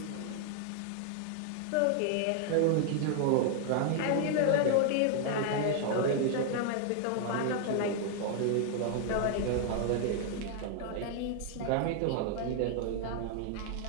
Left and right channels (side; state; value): both; different; correlation 0.00